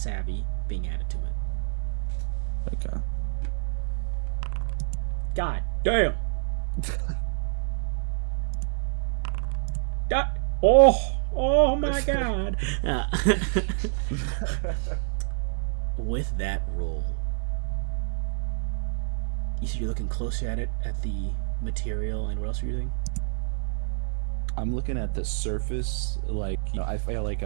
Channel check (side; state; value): left; silent; digital silence